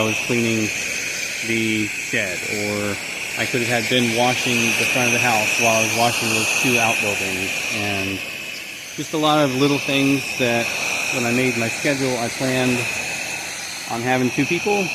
was cleaning the shed, or I could have been washing the front of the house while I was washing those 2 outbuildings. And just a lot of little things that when I made my schedule, I planned on having 2 people,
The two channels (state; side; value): identical; both; correlation 1.00